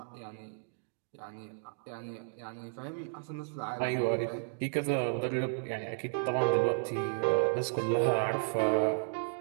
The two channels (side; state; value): left; silent; digital silence